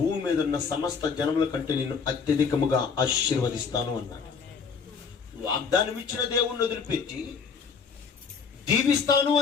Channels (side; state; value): right; quieter; 5.7 dB